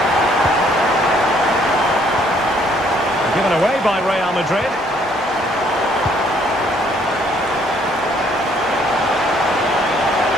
Given away by Real Madrid.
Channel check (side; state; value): both; normal; correlation 0.65